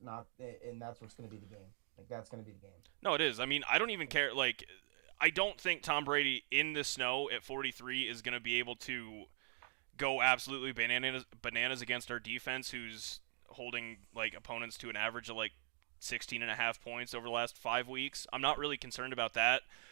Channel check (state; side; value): silent; left; digital silence